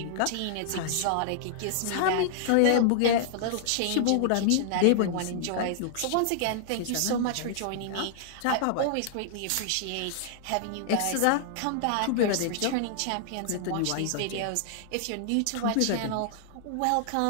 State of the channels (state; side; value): different; both; correlation -0.01